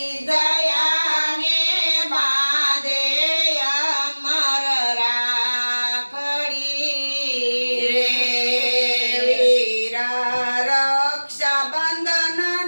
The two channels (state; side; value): inverted; both; correlation -1.00